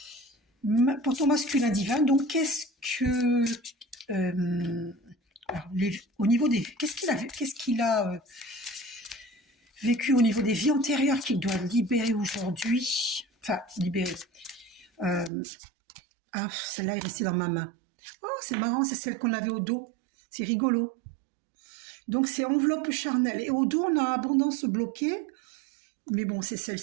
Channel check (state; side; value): drops out; left; at 15.3 s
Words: Pour ton masculin divin, donc qu'est-ce que au niveau des qu'est-ce qu'il a vécu au niveau des vies antérieures qu'il doit libérer aujourd'hui. Enfin, libérer. Celle-là est restée dans ma main. Oh, c'est marrant, c'est celle qu'on avait au dos. C'est rigolo. Donc, c'est enveloppe charnelle. Et au dos, on a abondance bloquée. Mais bon, c'est